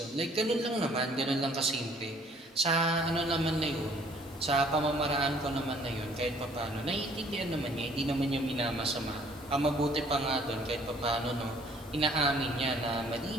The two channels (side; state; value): both; normal; correlation 0.59